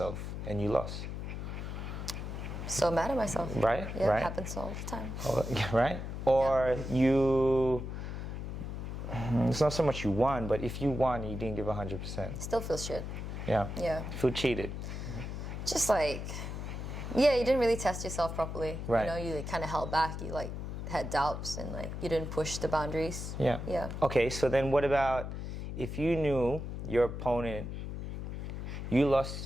and you lost? So mad at myself. Right, Yeah, right. it happens all the time. Right? Or it's not so much you won, but if you won and you didn't give 100%. Still feels shit. Yeah. Yeah. You feel cheated. Just like, yeah, you didn't really test yourself properly. Right. You know, you like, kind of held back. You like had doubts and like you didn't push the boundaries. Yeah. Yeah. Okay, so then what about if you knew your opponent, you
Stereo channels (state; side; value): noise; left; hum, 6 dB below the sound